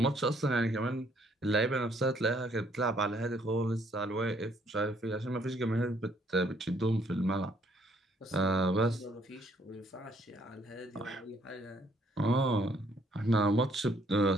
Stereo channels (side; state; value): both; normal; correlation 0.66